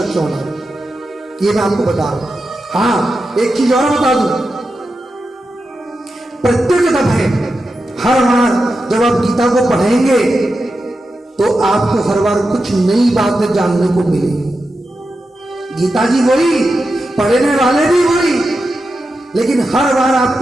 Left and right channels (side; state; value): both; normal; correlation 0.90